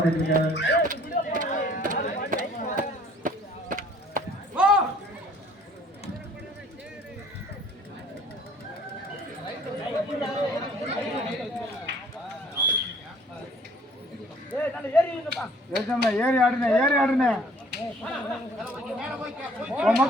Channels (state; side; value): normal; both; correlation 0.56